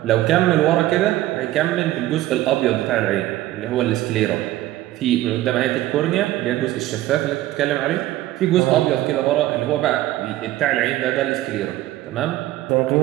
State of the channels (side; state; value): left; quieter; 15.4 dB